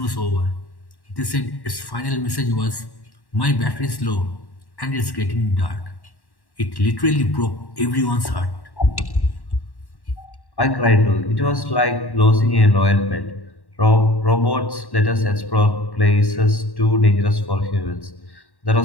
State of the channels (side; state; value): right; late; 1.1 ms